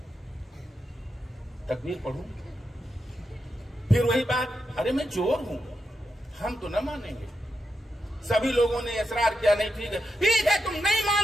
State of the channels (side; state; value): both; normal; correlation 0.86